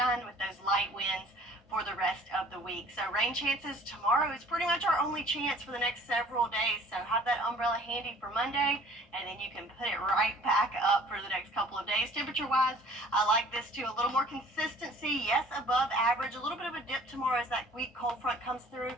with those light winds for the rest of the week. So rain chances tomorrow is pretty much our only chance for the next several days. So have that umbrella handy for Monday, and then you can put it right back up for the next couple of days. Temperature-wise, I like this too. A little more consistency, yes, above average. A little bit of a dip tomorrow as that weak cold front comes through,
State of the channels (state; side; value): normal; both; correlation 0.52